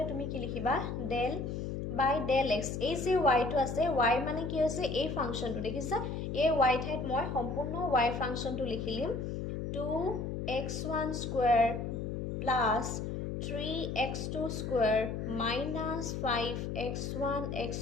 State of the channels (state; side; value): noise; left; hum, 3 dB below the sound